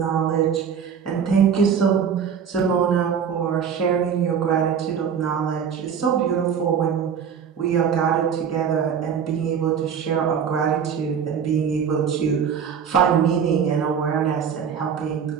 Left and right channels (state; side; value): quieter; left; 7.4 dB